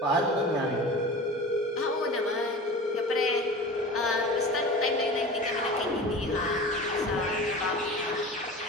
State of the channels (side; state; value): both; normal; correlation 0.35